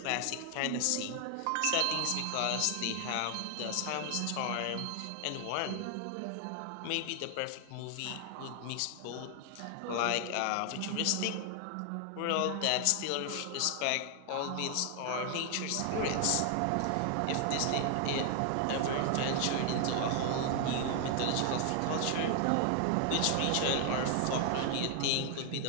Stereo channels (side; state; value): both; different; correlation 0.00